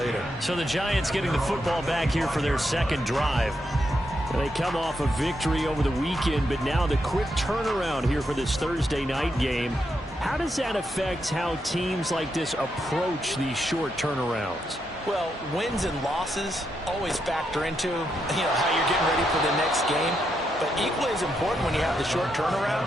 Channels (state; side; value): normal; both; correlation 0.82